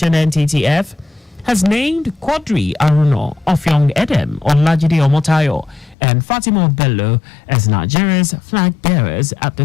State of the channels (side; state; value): right; drops out; at 6.0 s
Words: NTTF, has named Quadri Aruno, Ofyong Edem, Olajide Omotayo, and Fatima Bello as Nigeria's flag bearers at the